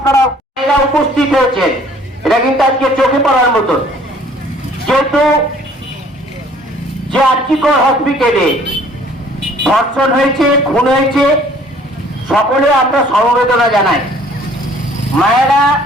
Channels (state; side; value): normal; both; correlation 0.56